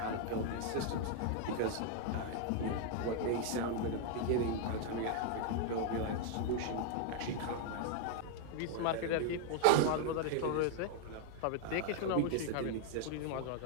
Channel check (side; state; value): both; different; correlation 0.00